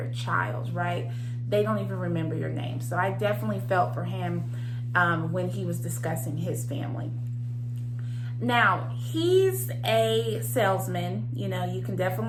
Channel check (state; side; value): identical; both; correlation 1.00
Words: child, right? They don't even remember your name. So I definitely felt for him when he was discussing his family. Now, he's a salesman, you know, you can